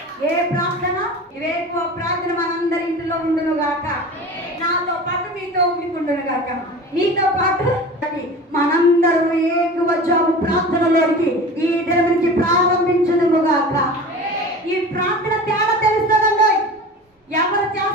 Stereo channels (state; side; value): normal; both; correlation 0.36